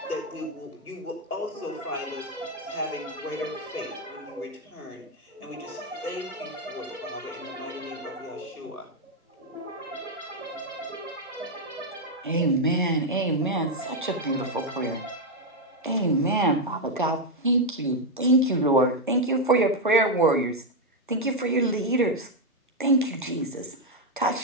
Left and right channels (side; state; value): both; normal; correlation 0.03